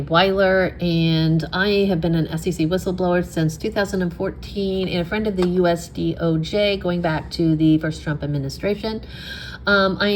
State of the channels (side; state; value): both; identical; correlation 1.00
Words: Wyler, and I have been an SEC whistleblower since 2014 and a friend of the US DOJ going back to the first Trump administration. I